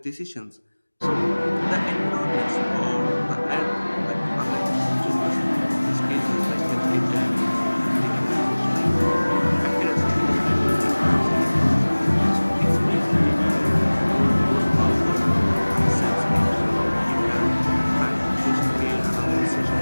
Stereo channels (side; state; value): both; inverted; correlation -1.00